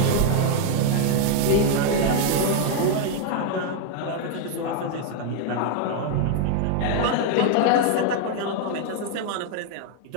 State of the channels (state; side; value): different; both; correlation 0.00